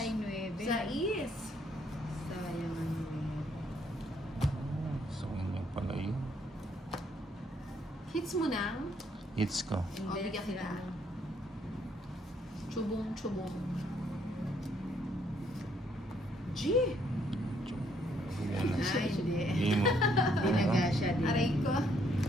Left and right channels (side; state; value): both; normal; correlation 0.69